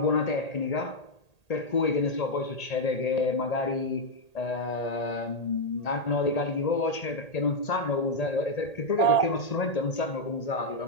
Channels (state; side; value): late; right; 1.8 ms